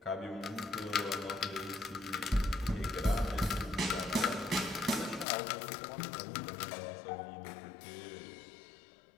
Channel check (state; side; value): drops out; right; at 5.2 s